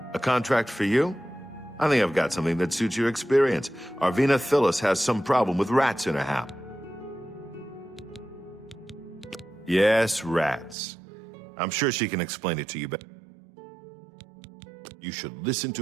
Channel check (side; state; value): left; drops out; at 10.8 s